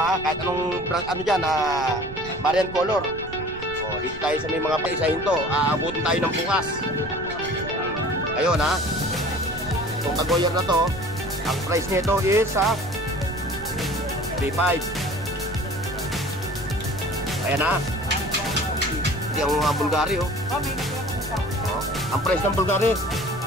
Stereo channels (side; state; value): right; noise; rumble, 14 dB below the sound